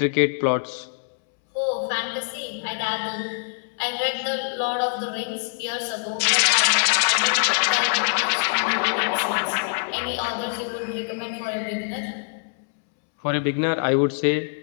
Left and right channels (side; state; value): right; silent; 63 dB below the other